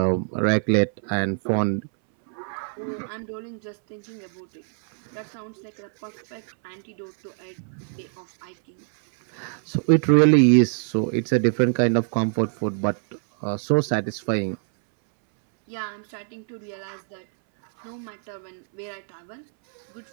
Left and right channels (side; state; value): left; silent; 62 dB below the other